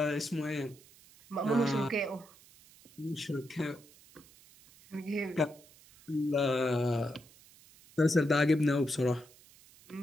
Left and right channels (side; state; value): right; noise; hiss, 25 dB below the sound